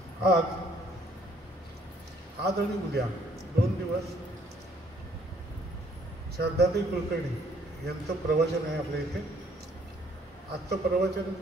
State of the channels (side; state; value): both; normal; correlation 0.63